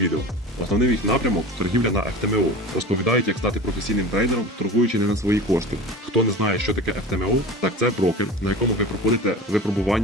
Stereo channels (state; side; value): normal; both; correlation 0.34